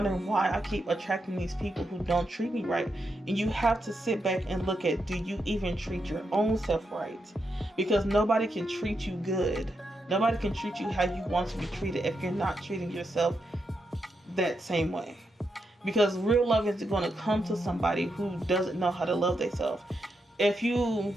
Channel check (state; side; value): normal; both; correlation 0.84